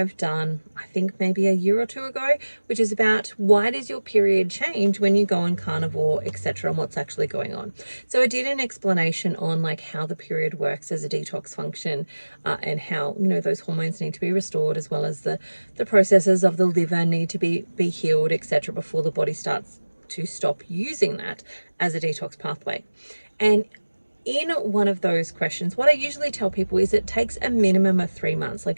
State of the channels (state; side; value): inverted; both; correlation -1.00